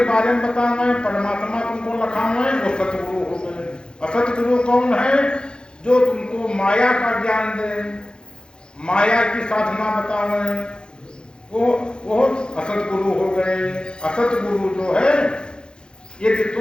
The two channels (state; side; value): late; right; 0.049 ms